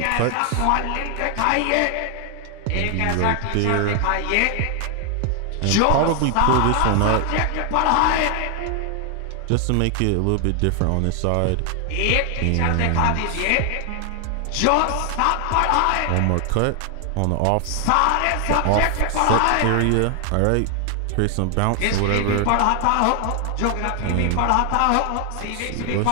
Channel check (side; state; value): both; different; correlation 0.00